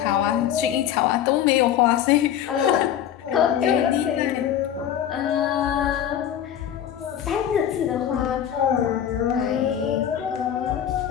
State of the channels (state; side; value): quieter; right; 10.1 dB